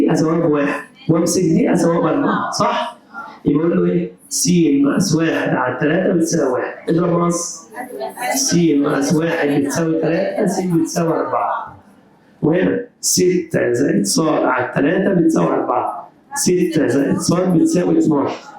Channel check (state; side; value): identical; both; correlation 1.00